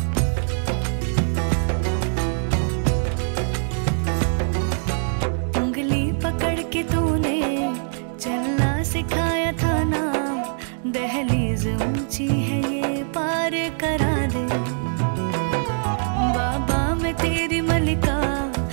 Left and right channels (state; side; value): silent; left; 63 dB below the other